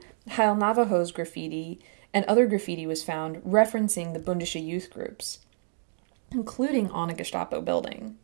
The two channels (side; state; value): left; silent; digital silence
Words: Heil Navajo's graffiti and other graffiti was found referencing the Bündische Youth groups, including on a Gestapo building.